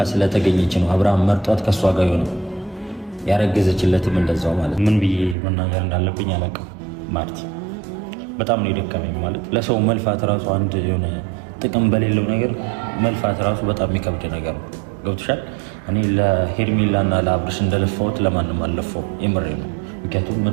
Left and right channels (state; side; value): drops out; left; at 5.4 s